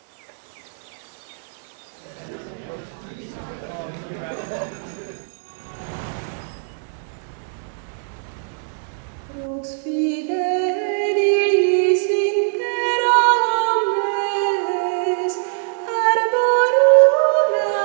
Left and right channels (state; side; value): silent; left; digital silence